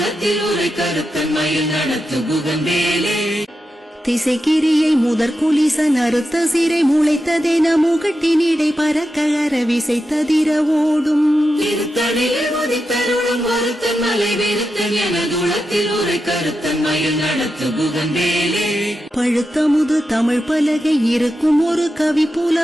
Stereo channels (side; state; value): both; normal; correlation 0.89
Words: உரை கருத்தன் மயில் நடத்து புகந்தேலே திசைக்கிரியை முதற் குலிசன் அறுத்த சிறை முளைத்ததென முகட்டினிடை பறக்க அரவிசை ததிர ஓடும் திருத்தணிலே உதித்தருளும் ஒருத்தன் மலை விருத்தன் எனதுளத்தில் உரை கருத்தன் மயில் நடத்து புகந்தேலே பழுத்த முது தமிழ் பலகை இருக்கும் ஒரு கவி